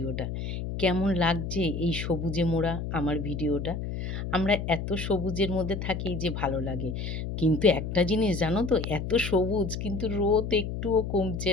কেমন লাগছে এই সবুজে মোড়া আমার ভিডিওটা? আমরা এত সবুজের মধ্যে থাকি যে ভালো লাগে। কিন্তু একটা জিনিস জানো তো? এত সবুজ কিন্তু রোদ একটুও কমছে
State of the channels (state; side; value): noise; left; hum, 4 dB below the sound